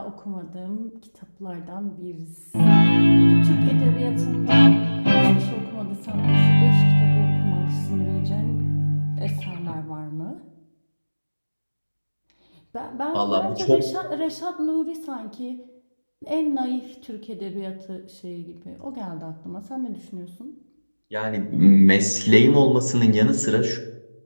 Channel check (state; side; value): inverted; both; correlation -1.00